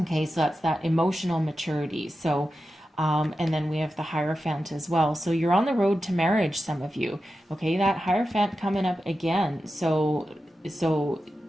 so that's that emotional maturity. So, and then we have the Hierophant as well. So you're on the road to marriage, some of you. Okay, that Hierophant coming up again. So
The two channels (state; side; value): normal; both; correlation 0.91